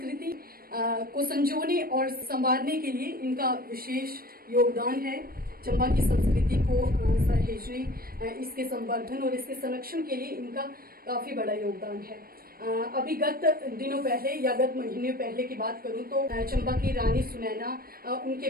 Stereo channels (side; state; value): left; late; 0.43 ms